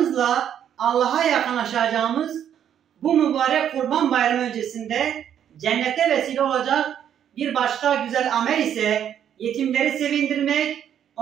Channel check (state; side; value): quieter; left; 9.5 dB